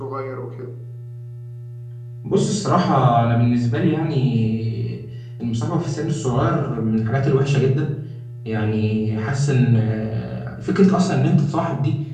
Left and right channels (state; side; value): identical; both; correlation 1.00